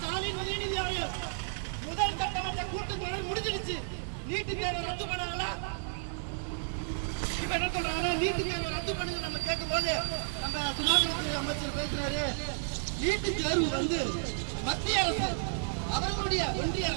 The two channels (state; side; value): silent; left; 56 dB below the other